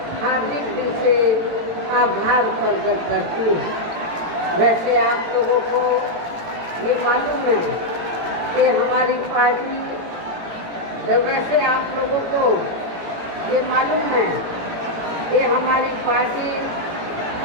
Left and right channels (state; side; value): late; left; 18 ms